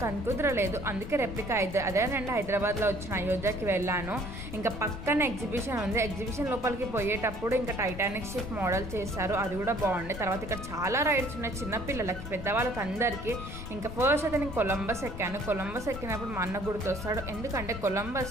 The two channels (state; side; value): noise; left; rumble, 10 dB below the sound